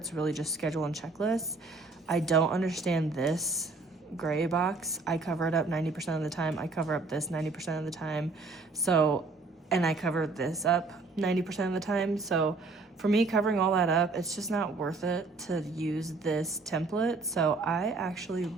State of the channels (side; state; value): left; quieter; 3.7 dB